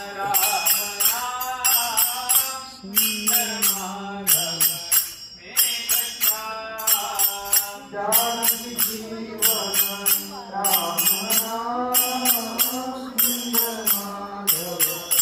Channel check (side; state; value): both; identical; correlation 1.00